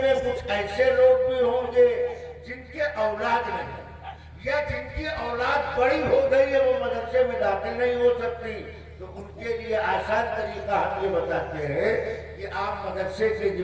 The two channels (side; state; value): both; identical; correlation 1.00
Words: میں کچھ ایسے لوگ بھی ہوں گے جن کے اولاد نہیں, یا جن کی اولاد بڑی ہو گئی ہے, وہ مدرسے میں داخل نہیں ہو سکتی. تو ان کے لیے آسان طریقہ ہم یہ بتاتے ہیں کہ آپ مدرسے کے